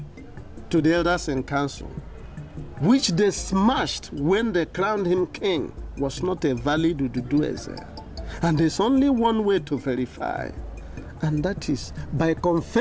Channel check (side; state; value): both; identical; correlation 1.00